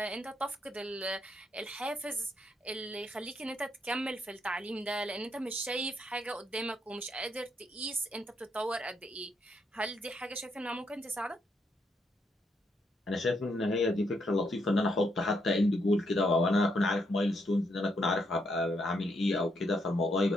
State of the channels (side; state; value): both; normal; correlation 0.76